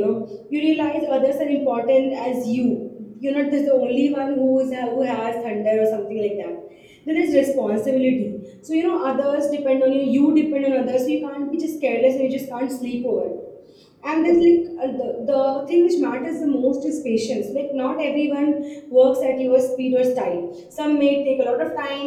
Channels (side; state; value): both; identical; correlation 1.00